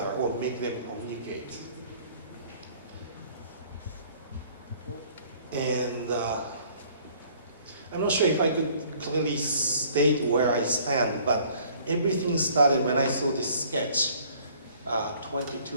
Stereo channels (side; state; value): both; inverted; correlation -0.56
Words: or make them communicate. And I'm not sure if I could clearly state where I stand, but everything started when I saw this sketch